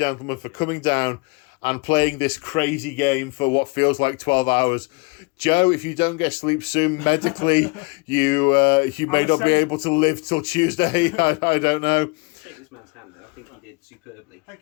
for coming down and playing this crazy game for what feels like 12 hours. Joe, if you don't get sleep soon, medically, you may not be able to live till Tuesday. I don't know. Shake this man's hand, though. I think he did superbly.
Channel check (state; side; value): quieter; right; 29.8 dB